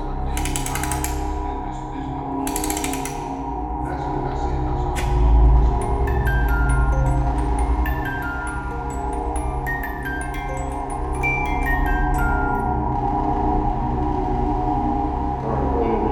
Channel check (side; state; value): both; identical; correlation 1.00